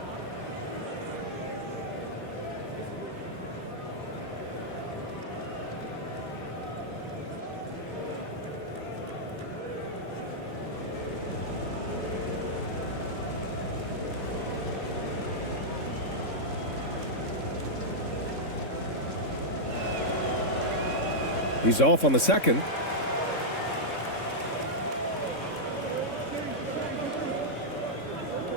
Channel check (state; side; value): late; right; 3.6 ms